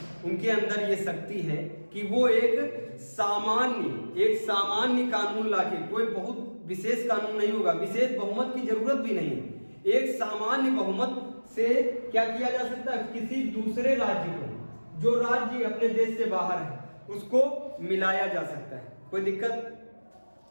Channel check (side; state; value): both; inverted; correlation -1.00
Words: उनके अंदर ये शक्ति है कि वो एक सामान्य कानून लाके, कोई बहुत विशेष कानून नहीं होगा, विशेष बहुमत की जरूरत भी नहीं है, एक सामान्य बहुमत से क्या किया जा सकता है, किसी दूसरे राज्य को, जो राज्य अपने देश से बाहर है, उसको मिलाया जा सकता है। कोई दिक्कत?